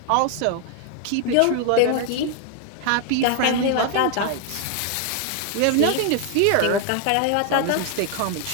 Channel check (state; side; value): different; both; correlation 0.00